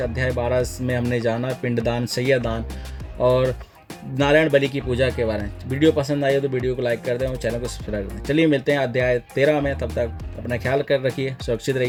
अध्याय 12 में हमने जाना पिंडदान, सैयादान और नारायण बलि की पूजा के बारे में। वीडियो पसंद आई हो तो वीडियो को लाइक कर दें और चैनल को सब्सक्राइब कर दें। चलिए मिलते हैं अध्याय 13 में। तब तक अपना ख्याल कर रखिए, सुरक्षित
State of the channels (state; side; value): identical; both; correlation 1.00